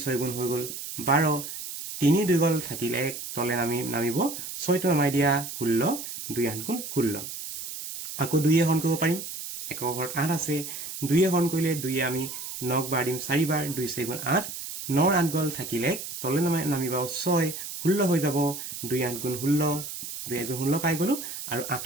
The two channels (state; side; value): noise; right; hiss, 8 dB below the sound